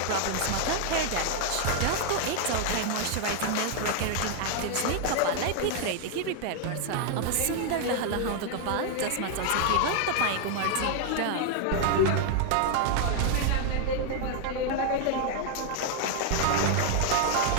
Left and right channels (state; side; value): different; both; correlation 0.00